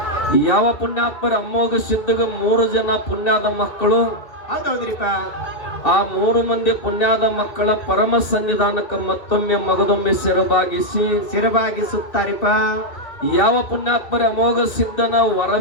ಯಾವ ಪುಣ್ಯಾತ್ಮರ ಅಮೋಘ ಸಿದ್ಧಗ 3 ಜನ ಪುಣ್ಯದ ಮಕ್ಕಳು. ಹೌದ್ರಿಪ್ಪ. ಆ 3 ಮಂದಿ ಪುಣ್ಯದ ಮಕ್ಕಳ ಪರಮ ಸನ್ನಿಧಾನಕ್ಕೆ ಮತ್ತೊಮ್ಮೆ ಮಗದೊಮ್ಮೆ ಶಿರಬಾಗಿಸುತ್ತಾರಿಪ್ಪ. ಯಾವ ಪುಣ್ಯಾತ್ಮರ ಅಮೋಘ ಸಿದ್ಧನ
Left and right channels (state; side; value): late; right; 2.6 ms